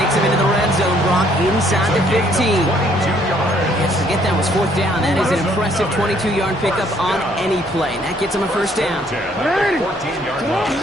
him into the red zone, Brock, inside the 15. Forget that was fourth down. That is an impressive 22-yard pickup on any play. That gets him a first down. 14-yard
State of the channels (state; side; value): normal; both; correlation 0.65